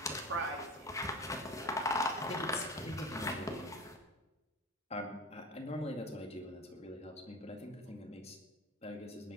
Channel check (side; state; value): both; normal; correlation 0.31